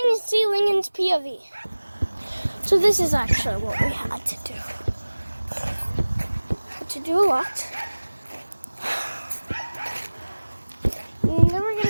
and see Lincoln's POV. So this is actually what we had to do. To do a lot. You're never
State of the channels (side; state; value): both; inverted; correlation -1.00